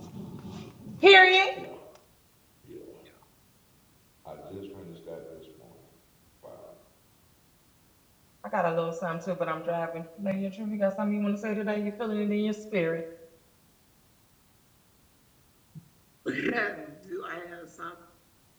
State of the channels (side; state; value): both; identical; correlation 1.00